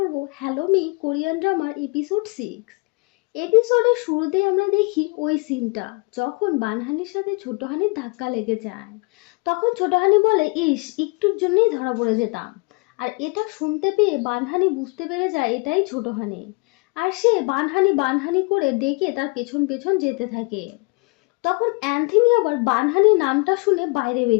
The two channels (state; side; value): quieter; right; 29.5 dB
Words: হ্যালো মি কোরিয়ান ড্রামার এপিসোড 6। এপিসোডের শুরুতেই আমরা দেখি ওই সিনটা, যখন বানহানির সাথে ছোট হানির ধাক্কা লেগে যায়। তখন ছোট হানি বলে, ইস, একটুর জন্যই ধরা পড়ে যেতাম। আর এটা শুনতে পেয়ে বানহানি বুঝতে পেরে যায় এটাই ছোট হানি। আর সে বানহানি বানহানি করে ডেকে তার পেছন পেছন যেতে থাকে। তখন অ্যান্থনি আবার বানহানি নামটা শুনে বাইরে